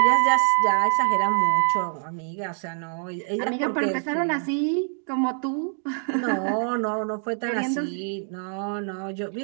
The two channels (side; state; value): left; silent; 59 dB below the other